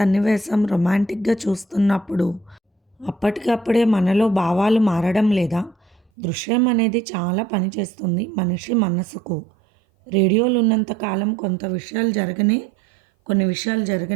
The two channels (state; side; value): drops out; left; at 6.0 s